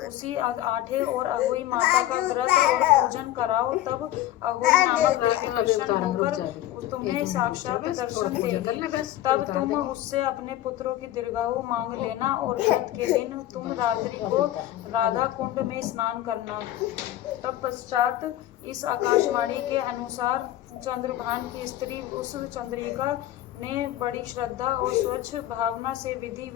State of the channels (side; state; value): right; quieter; 13.8 dB